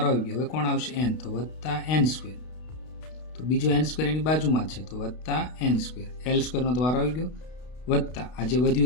આવી ગયો. હવે કોણ આવશે, n, તો +n². તો બીજો n² એની બાજુમાં છે, તો +n². l² નો તો વારો આવી ગયો, વત્તા આ જે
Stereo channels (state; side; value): late; right; 32 ms